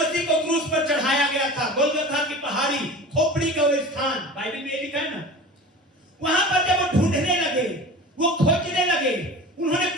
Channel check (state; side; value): normal; both; correlation 0.36